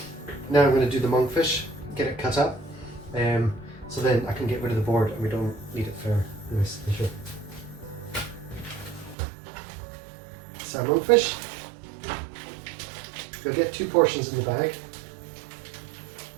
now I'm going to do the monkfish, get it cut up, so then I can get rid of the board and we don't need it for this issue. So monkfish, you'll get 2 portions in the bag.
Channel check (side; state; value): left; drops out; at 9.2 s